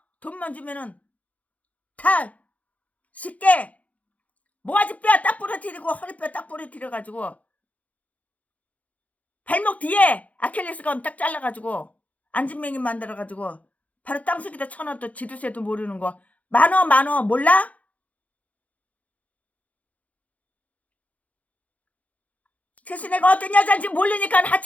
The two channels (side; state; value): right; late; 0.069 ms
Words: 돈만 주면은 다 쉽게 모가지뼈 딱 부러뜨리고 허리뼈 딱 부러뜨려가지고 발목 뒤에 아킬레스건 딱 잘라가지고 안진뱅이 만들어가지고 바로 땅속에다 쳐넣어도 지두새도 모르는 거. 만원 몰라? 최순애가 어떤 여자인지 모르니까